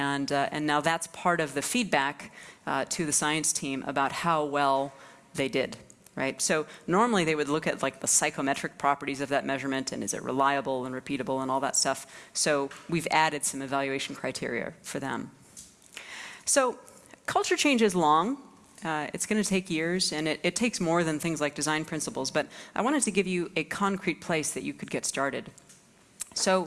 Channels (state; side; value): identical; both; correlation 1.00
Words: now that's part of the feedback to the science team about how well they did. Right? So normally they would look at like the psychometric properties of that measurement and is it reliable and repeatable and all that stuff. So we've added some evaluation criteria for them. So culture change is long. It's going to take years, and it takes more than things like design principles, but I wanted to give you a concrete place that you could get started.